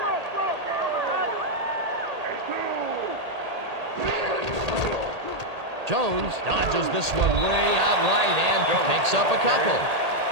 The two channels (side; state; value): left; late; 1.8 ms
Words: Jones dodges this one way out right and picks up a couple.